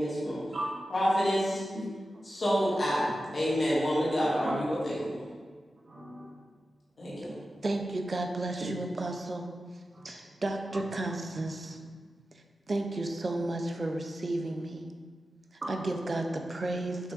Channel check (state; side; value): normal; both; correlation 0.92